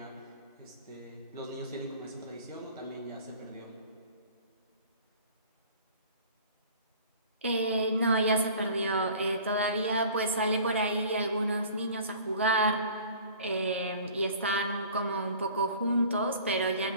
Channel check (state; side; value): inverted; both; correlation -0.47